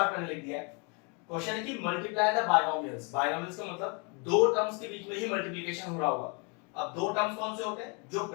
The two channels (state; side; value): quieter; right; 33.0 dB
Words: मैंने लिख दिया है। क्वेश्चन है कि मल्टीप्लाई द बायनोमियल्स। बायनोमियल्स का मतलब दो टर्म्स के बीच में ही मल्टीप्लिकेशन हो रहा होगा। अब दो टर्म्स कौन से होते हैं? जो